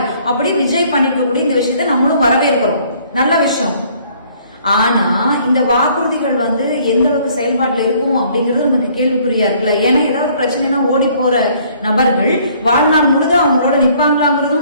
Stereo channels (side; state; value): both; inverted; correlation -0.60